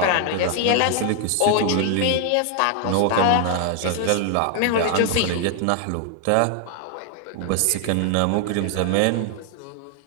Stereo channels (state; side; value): different; both; correlation 0.00